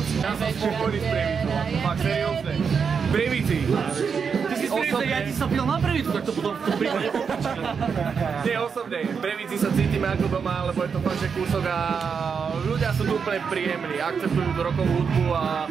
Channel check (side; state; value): left; quieter; 6.1 dB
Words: Ja som spokojný s Prievicou, fakt seriózne. V Prievidzi. Ty si osobne, ja ti sa pil na Prievidzu, tak to potom v tom prípade popačka. Nie osobne, v Prievidzi sa cítime ako doma, lebo je to fakt, že kúsok a ľudia sú tu úplne príjemní, akceptujú rokovú hudbu a